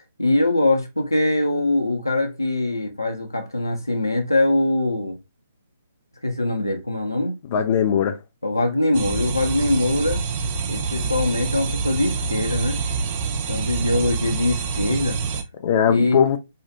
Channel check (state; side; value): inverted; both; correlation -0.79